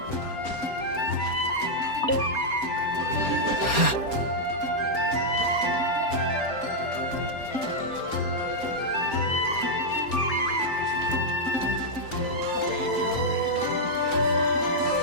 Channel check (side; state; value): right; late; 4.3 ms